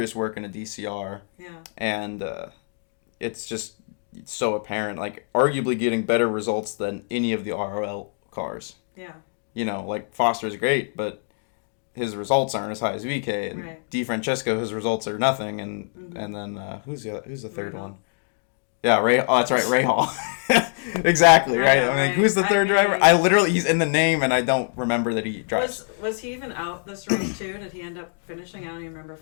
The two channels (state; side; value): silent; right; 61 dB below the other